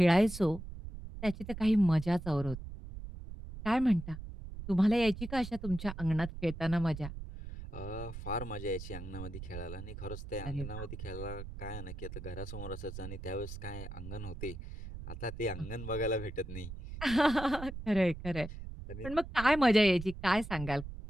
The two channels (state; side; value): noise; right; rumble, 10 dB below the sound